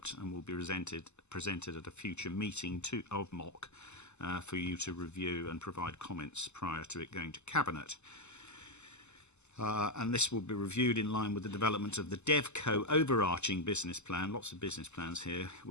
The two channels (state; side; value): late; right; 0.82 ms